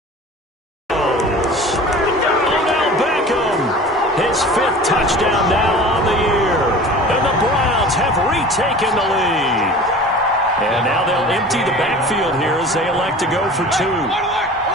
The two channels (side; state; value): both; normal; correlation 0.40